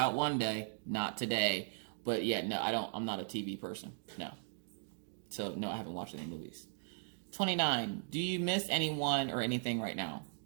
one day. Not today. But, yeah, no, I'm not a TV person. No. So, no, I haven't watched any movies. 29. Do you miss anyone or anything right now?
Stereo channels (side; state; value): left; silent; digital silence